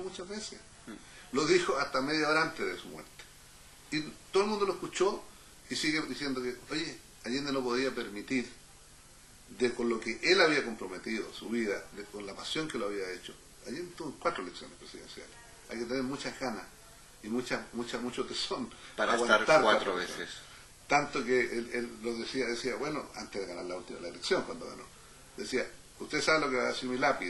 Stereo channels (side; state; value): both; identical; correlation 1.00